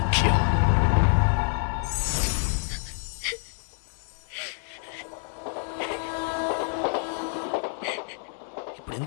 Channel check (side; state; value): right; silent; 60 dB below the other